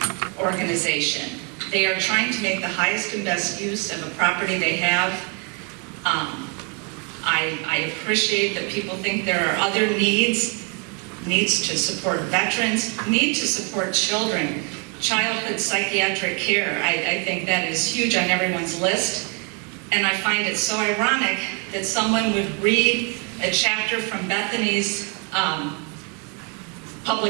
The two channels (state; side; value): quieter; left; 35.4 dB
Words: organization. They are trying to make the highest and best use of a property they have. I appreciate that people think there are other needs to support veterans, need to support children, childhood psychiatric care. I think that is huge on everyone's list. And I find it so ironic that someone would read a chapter from Bethany's